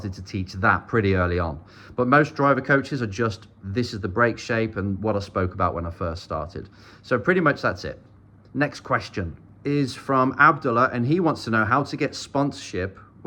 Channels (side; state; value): both; identical; correlation 1.00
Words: to teach that pretty early on. But most driver coaches are just, this is the brake shape and what I spoke about when I first started. So pretty much that's it. Next question is from Abdullah, and he wants to know how to get sponsorship